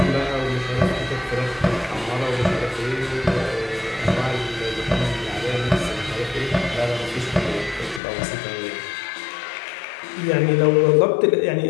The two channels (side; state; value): right; drops out; at 8.0 s